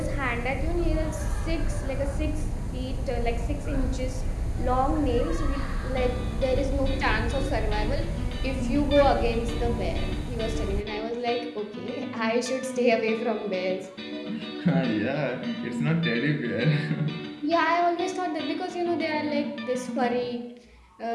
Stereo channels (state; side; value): identical; both; correlation 1.00